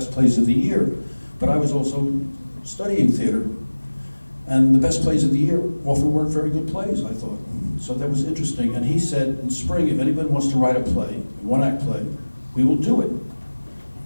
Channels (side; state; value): both; inverted; correlation -1.00